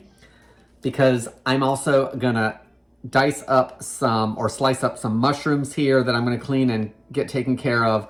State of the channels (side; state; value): both; identical; correlation 1.00